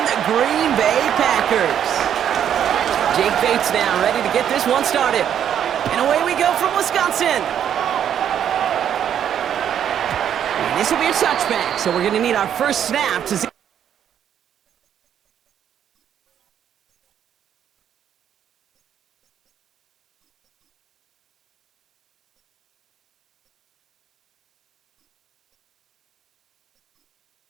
the Green Bay Packers. Jake Bates now ready to get this one started. And away we go from Wisconsin. And this will be a touchback, so we're going to need our first snap to see.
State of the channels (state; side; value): quieter; left; 9.4 dB